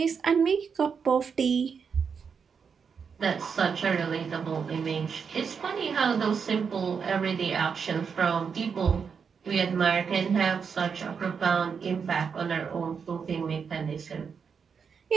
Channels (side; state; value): left; quieter; 6.2 dB